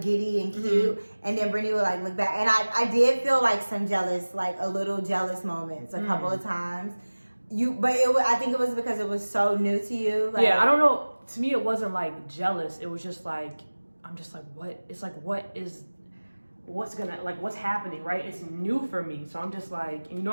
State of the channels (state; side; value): inverted; both; correlation -1.00